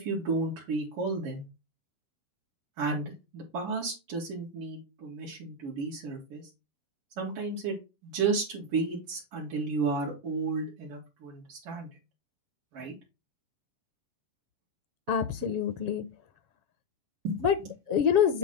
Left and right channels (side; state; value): left; late; 7.3 ms